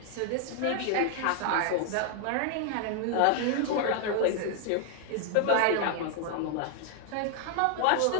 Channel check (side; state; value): both; different; correlation 0.00